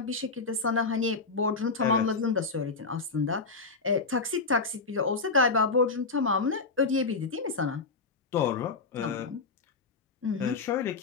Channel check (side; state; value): right; quieter; 4.2 dB